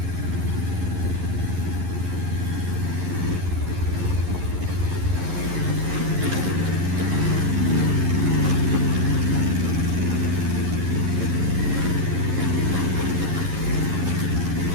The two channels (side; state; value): left; late; 11 ms